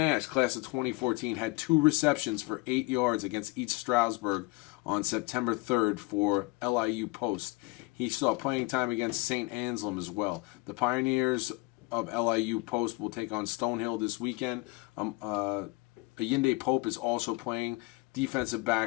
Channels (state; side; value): quieter; right; 24.1 dB